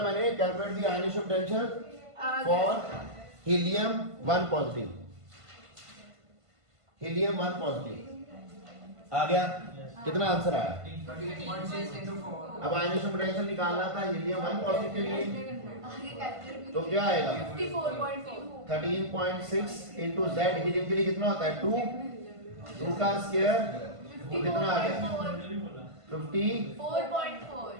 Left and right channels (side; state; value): left; late; 1.5 ms